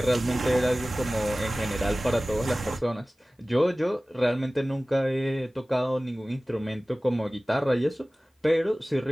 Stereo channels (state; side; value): normal; both; correlation 0.98